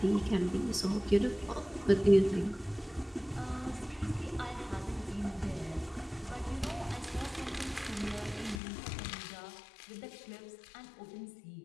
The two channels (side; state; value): right; drops out; at 8.6 s